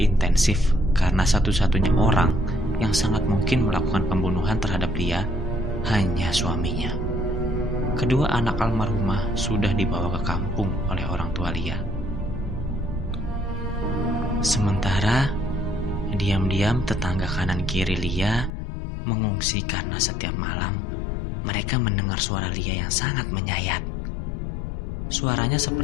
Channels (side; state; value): right; drops out; at 18.5 s